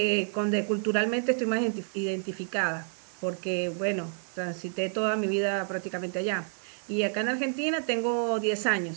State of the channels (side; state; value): left; silent; 58 dB below the other